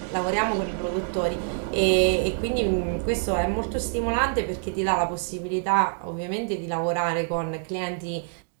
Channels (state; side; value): silent; left; digital silence